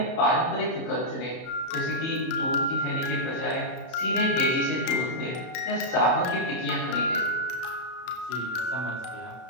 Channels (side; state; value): right; late; 32 ms